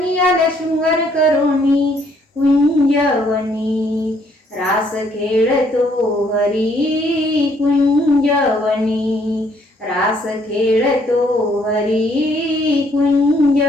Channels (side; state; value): both; normal; correlation 0.67